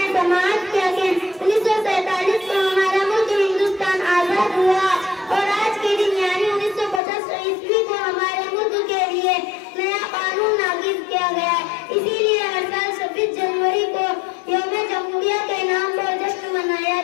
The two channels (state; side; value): drops out; right; at 7.0 s